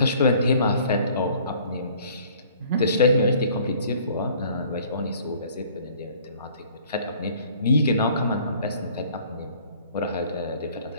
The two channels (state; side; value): inverted; both; correlation -0.54